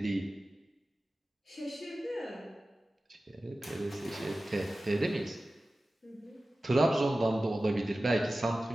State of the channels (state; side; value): normal; both; correlation 0.95